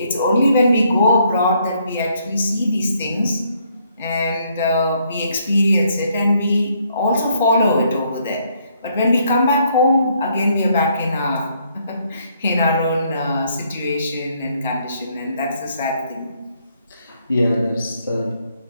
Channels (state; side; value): inverted; both; correlation -0.70